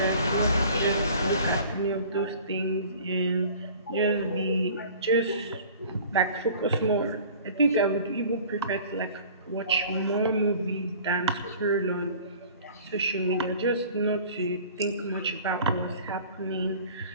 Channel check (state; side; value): inverted; both; correlation -0.47